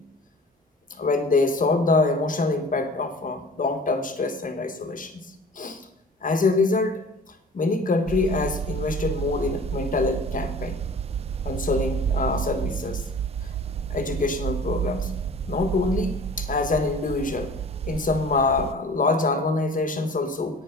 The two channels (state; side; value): normal; both; correlation 0.44